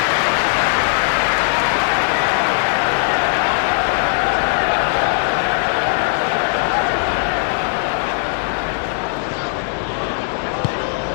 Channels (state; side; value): silent; right; digital silence